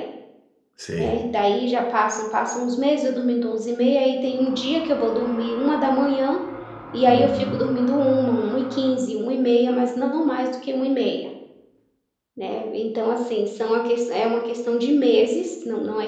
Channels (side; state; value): both; identical; correlation 1.00